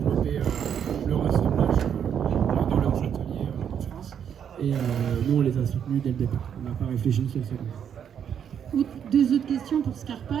le ressemblage dans leurs ateliers en France. Et nous, on les a soutenus dès le départ. On n'a pas réfléchi une seule seconde. Deux autres questions pour Scarpa,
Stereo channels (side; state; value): left; quieter; 8.4 dB